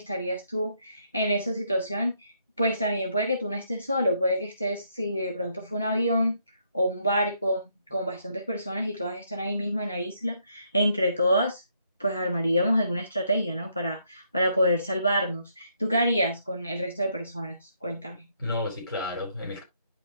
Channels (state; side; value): inverted; both; correlation -0.73